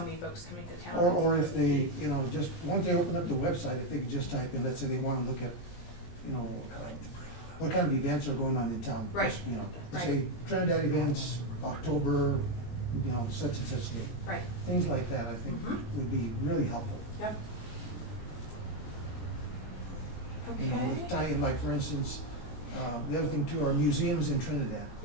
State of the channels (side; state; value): right; late; 17 ms